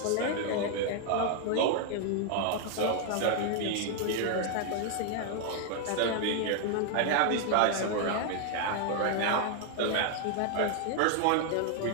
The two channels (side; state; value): both; different; correlation 0.00